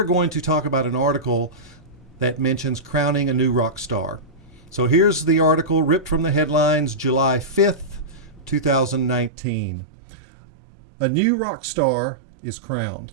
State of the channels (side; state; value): left; drops out; at 9.3 s